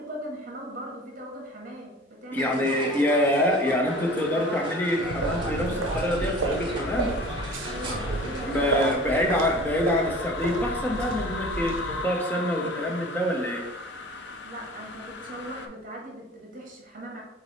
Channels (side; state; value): both; normal; correlation 0.43